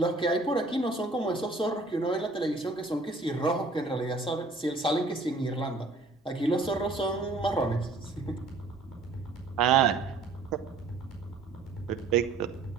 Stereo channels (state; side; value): quieter; left; 3.4 dB